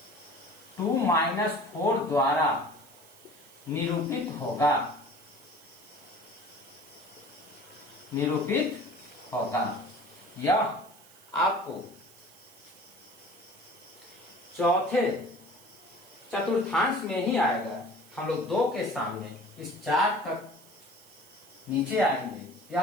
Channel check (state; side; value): noise; right; hiss, 23 dB below the sound